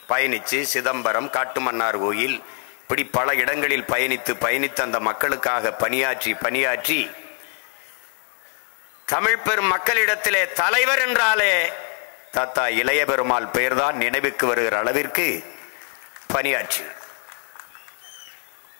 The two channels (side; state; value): right; quieter; 38.2 dB